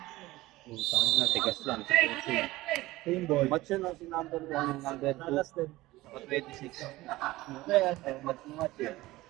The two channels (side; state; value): left; quieter; 18.3 dB